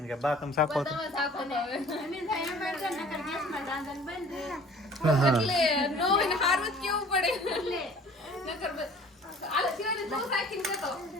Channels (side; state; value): both; normal; correlation 0.49